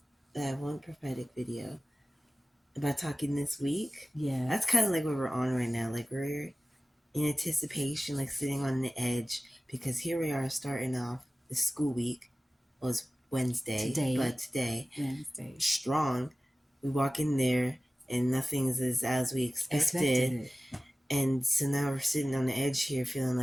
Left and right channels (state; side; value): normal; both; correlation 0.96